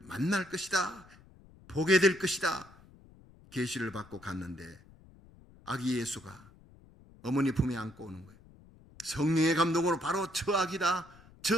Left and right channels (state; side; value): noise; left; rumble, 24 dB below the sound